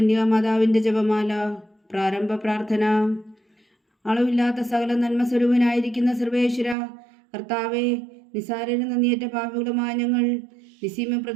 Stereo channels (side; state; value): left; drops out; at 6.8 s